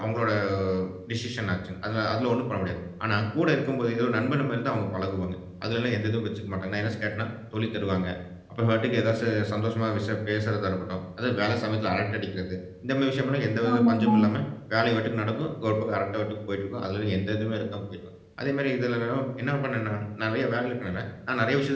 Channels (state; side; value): identical; both; correlation 1.00